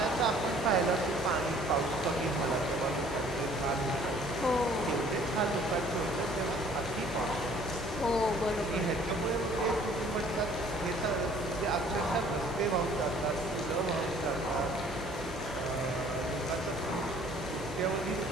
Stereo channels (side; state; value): both; normal; correlation 0.56